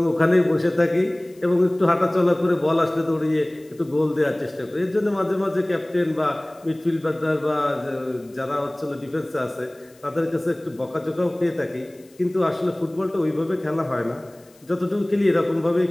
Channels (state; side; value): noise; left; hiss, 30 dB below the sound